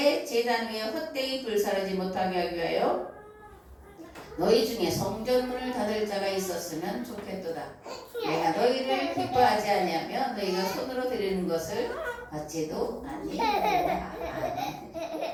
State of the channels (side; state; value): both; identical; correlation 1.00